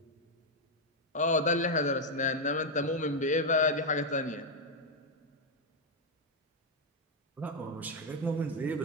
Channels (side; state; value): both; normal; correlation 0.01